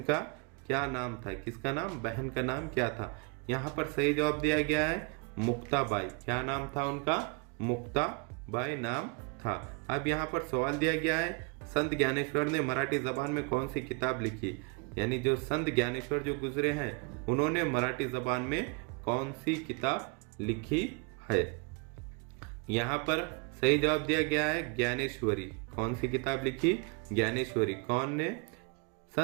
का क्या नाम था, किसका नाम, बहन का नाम क्या था। यहाँ पर सही जवाब दिया गया है मुक्ताबाई। क्या नाम था उनका, मुक्ताबाई नाम था। अब यहाँ पर सवाल दिया गया है संत ज्ञानेश्वर ने मराठी जबान में कौन सी किताब लिखी, यानी जो संत ज्ञानेश्वर जो गुजरे हैं उन्होंने मराठी जबान में कौन सी किताब लिखी है। यहाँ पर सही जवाब दिया गया है ज्ञानेश्वरी। कौन सी किताब लिखी, ज्ञानेश्वरी। कौन ने,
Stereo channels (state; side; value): quieter; left; 32.3 dB